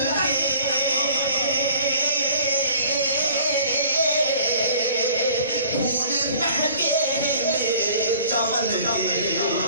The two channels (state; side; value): inverted; both; correlation -0.49